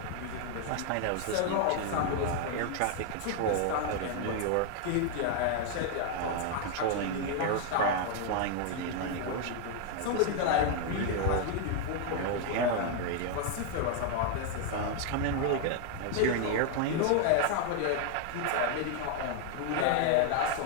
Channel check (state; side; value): different; both; correlation 0.00